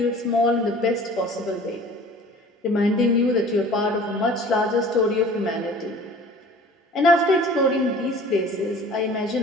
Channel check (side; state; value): both; normal; correlation 0.46